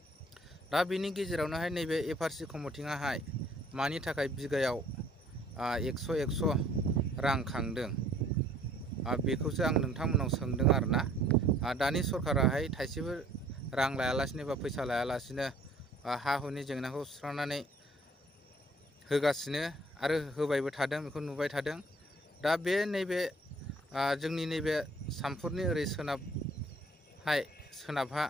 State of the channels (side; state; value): both; normal; correlation 0.58